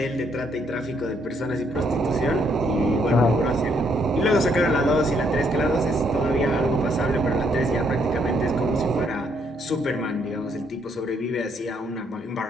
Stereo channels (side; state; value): both; normal; correlation 0.71